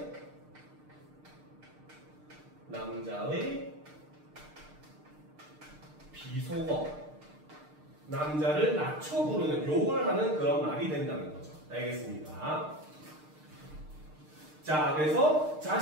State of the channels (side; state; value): left; late; 6.6 ms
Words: 남자의 비속어, 남자를 낮춰 부르는 욕을 하는 그런 말이 된다는 거죠. 알겠습니까? 자, 그래서